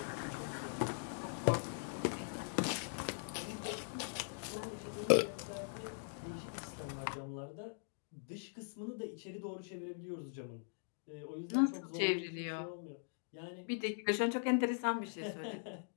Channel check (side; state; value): right; silent; digital silence